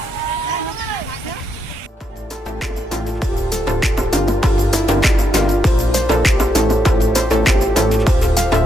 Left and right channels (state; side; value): normal; both; correlation 0.81